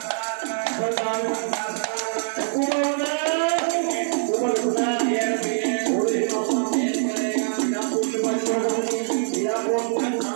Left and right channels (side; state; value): left; silent; digital silence